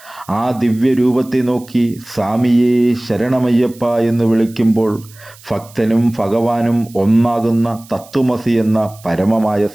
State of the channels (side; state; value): right; noise; hiss, 23 dB below the sound